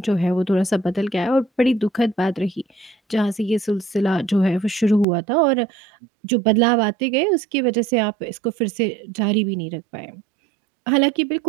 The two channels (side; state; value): left; drops out; at 5.1 s